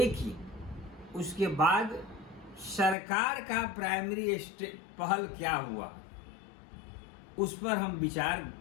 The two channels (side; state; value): right; drops out; at 3.0 s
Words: उसके बाद सरकार का प्राइमरी पहल क्या हुआ, उस पर हम विचार